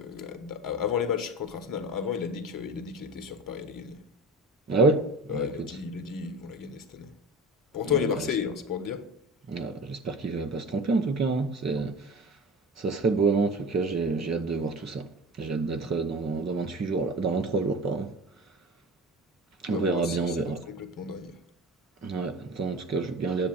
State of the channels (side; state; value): both; normal; correlation 0.34